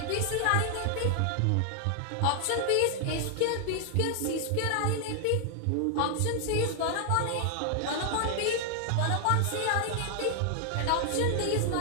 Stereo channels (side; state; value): both; different; correlation 0.00